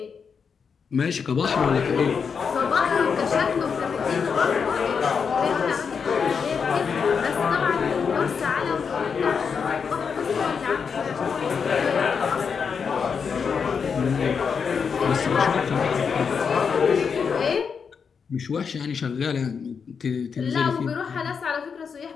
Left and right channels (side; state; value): right; quieter; 6.1 dB